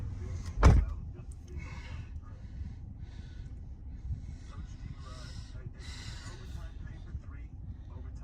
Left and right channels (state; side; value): identical; both; correlation 1.00